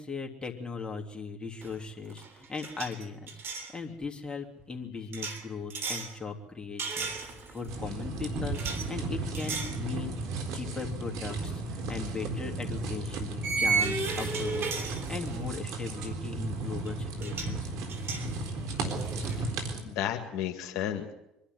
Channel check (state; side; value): normal; both; correlation 0.46